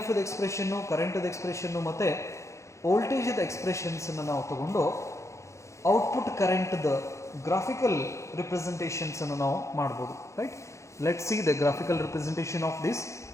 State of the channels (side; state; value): right; late; 0.14 ms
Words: ಎಕ್ಸ್ಪ್ರೆಷನ್ನು, ಕರೆಂಟದ ಎಕ್ಸ್ಪ್ರೆಷನ್ನು ಮತ್ತು ವೋಲ್ಟೇಜದ ಎಕ್ಸ್ಪ್ರೆಷನ್ಸನ್ನು ನಾವು ತಗೊಂಡು ಔಟ್ಪುಟ್ ಕರೆಂಟ್ದ ಗ್ರಾಫಿಕಲ್ ರಿಪ್ರೆಸೆಂಟೇಷನ್ಸನ್ನು ನಾವು ಮಾಡ್ಬೋದು. Right? Let see the graphical representation of this